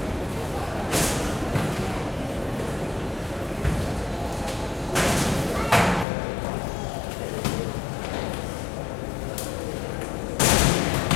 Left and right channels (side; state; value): right; drops out; at 6.1 s